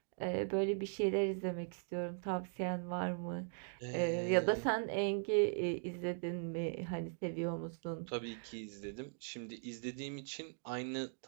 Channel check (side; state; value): left; silent; digital silence